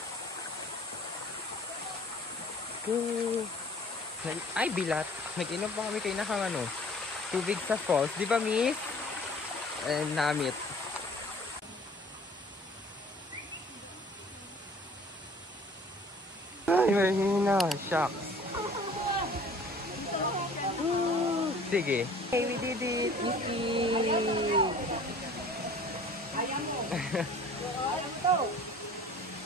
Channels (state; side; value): normal; both; correlation 0.49